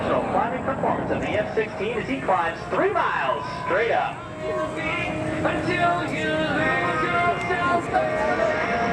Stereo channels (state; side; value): identical; both; correlation 1.00